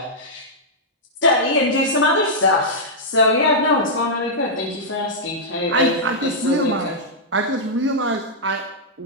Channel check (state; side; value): normal; both; correlation -0.09